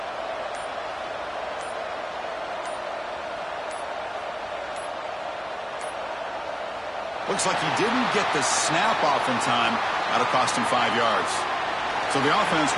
Looks like he didn't get the snap off in time. That'll cost him 5 yards. So the offense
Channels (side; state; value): both; identical; correlation 1.00